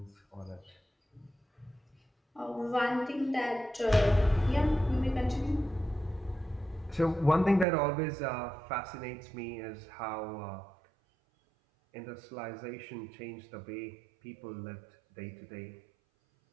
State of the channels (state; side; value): drops out; left; at 7.7 s